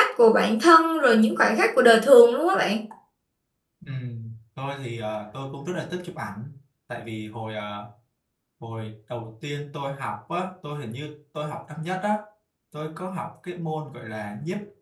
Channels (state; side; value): identical; both; correlation 1.00